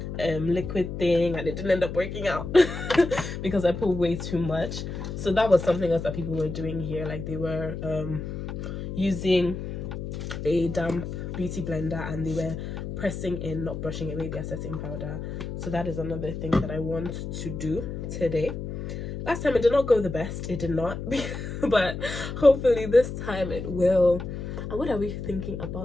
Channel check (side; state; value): left; noise; hum, 6 dB below the sound